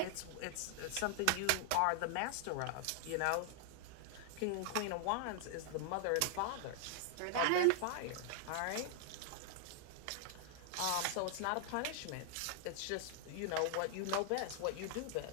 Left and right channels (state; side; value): different; both; correlation 0.00